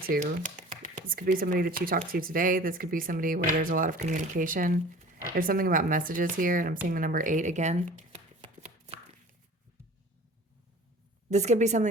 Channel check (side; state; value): both; normal; correlation 0.44